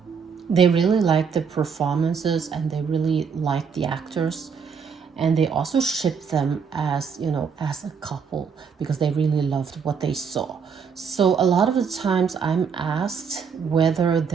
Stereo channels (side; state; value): left; quieter; 6.3 dB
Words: they really like the performances and they really like the actors. And they also ship them as as a couple because they really loved what they saw. So a lot of the times I'm asked whether